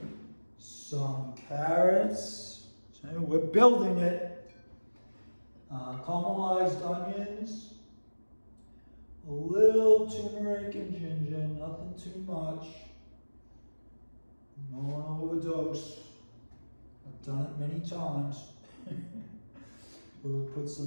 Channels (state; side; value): inverted; both; correlation -1.00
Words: Some carrots. So we're building it. Caramelized onions. A little turmeric and ginger, nothing too much. You don't want to overdose. I've done it many times. We'll put